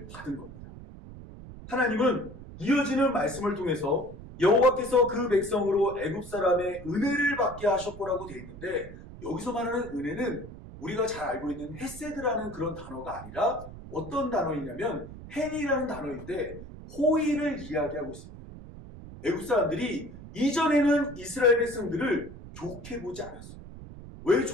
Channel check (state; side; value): noise; right; rumble, 14 dB below the sound